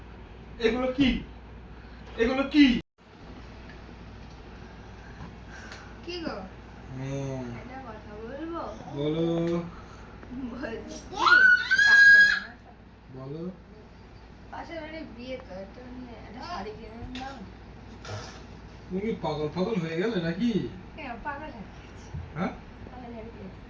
এগুলো কি? এগুলো কি? কি গো? হ্যাঁ একটা কথা বলবো? বলো। বলছি বলো। পাশের বাড়ির বিয়ে তো একটা একটা শাড়ি কিনে দাও। তুমি কি পাগল পাগল হয়ে গেলে নাকি? কেন পাগল হয়ে গেছে? হ্যাঁ পাগল হয়ে গেছে?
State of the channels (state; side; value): identical; both; correlation 1.00